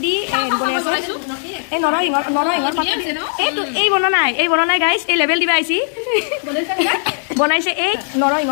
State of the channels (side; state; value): right; silent; digital silence